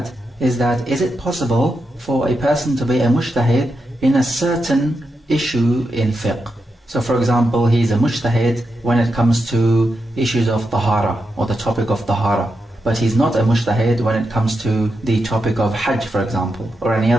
is it possible for a person to be a mujtahid in a certain issue in fiqh? So for example, he's a mujtahid when it comes to issues of tahara, or the topic of tahara. But he's not a mujtahid when it comes to the topic of hajj, for example, or any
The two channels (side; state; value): both; normal; correlation 0.86